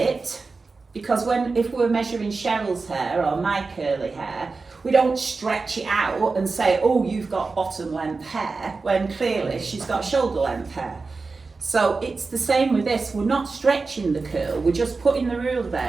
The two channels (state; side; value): quieter; left; 4.1 dB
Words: because if we're measuring Cheryl's hair or my curly hair, we don't stretch it out and say, oh, you've got bottom length hair, when clearly she's got shoulder length hair. So it's the same with this. We're not stretching the curl, we're just putting the ruler